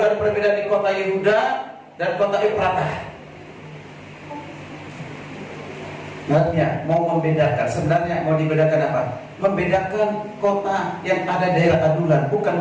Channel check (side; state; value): both; identical; correlation 1.00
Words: ada perbedaan di kota Yehuda dan kota Efrata. Artinya mau membedakan, sebenarnya mau dibedakan apa? Membedakan kota yang ada daerah adulan, bukan